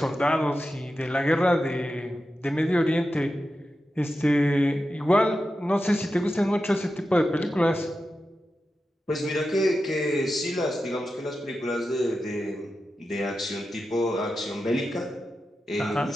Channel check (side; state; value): both; normal; correlation 0.91